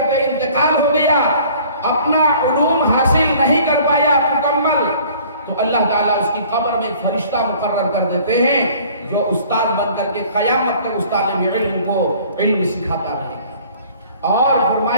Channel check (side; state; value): both; inverted; correlation -0.52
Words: انتقال ہو گیا، اپنا علوم حاصل نہیں کر پایا مکمل، تو اللہ تعالیٰ اس کی قبر میں ایک فرشتہ مقرر کر دیتے ہیں جو استاد بن کر کے قیامت تک اس طالب علم کو علم سکھاتا رہے۔ اور